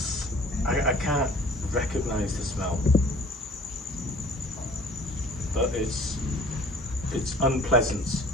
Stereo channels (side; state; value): both; normal; correlation 0.51